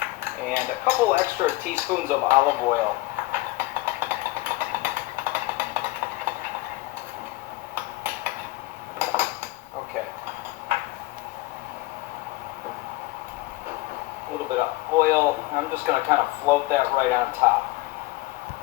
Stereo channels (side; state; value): right; quieter; 20.3 dB